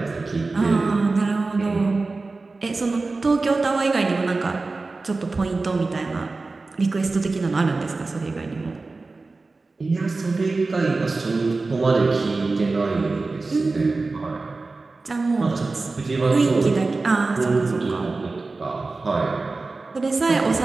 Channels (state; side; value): quieter; left; 3.6 dB